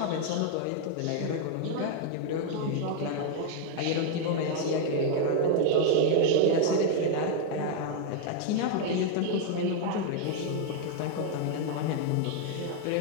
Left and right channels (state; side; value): different; both; correlation 0.00